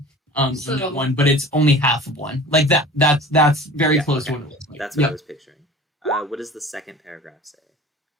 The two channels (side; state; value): both; normal; correlation 0.41